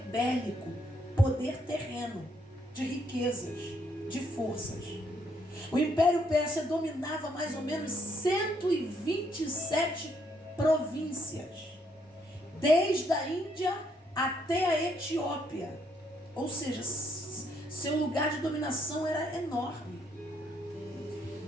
bélico, poder terreno, de riquezas, de forças. O Império Pérsia dominava mais ou menos 127 províncias, desde a Índia até a Etiópia. Ou seja, seu lugar de dominação era enorme.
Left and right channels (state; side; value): normal; both; correlation 0.72